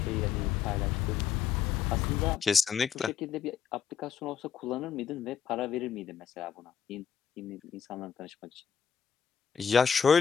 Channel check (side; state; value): right; quieter; 7.7 dB